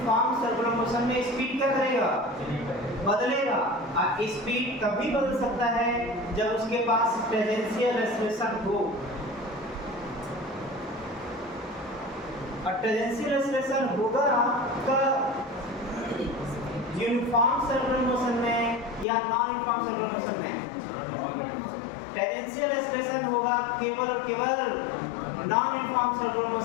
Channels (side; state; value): right; drops out; at 19.1 s